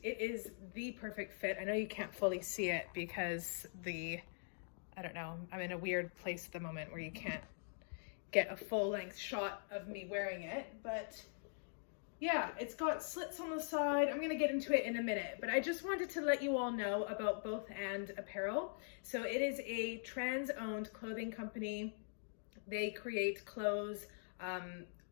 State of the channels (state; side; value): silent; right; digital silence